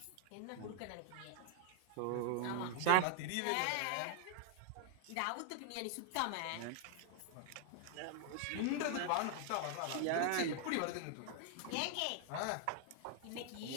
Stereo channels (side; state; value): both; different; correlation 0.00